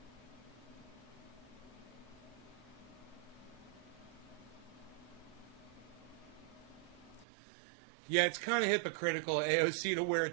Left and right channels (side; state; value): left; drops out; at 7.2 s